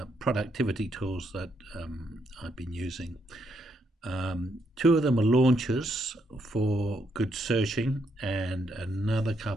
productivity tools that I've been using. Two of them are launchers for good searching, and another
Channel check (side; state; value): both; normal; correlation 0.76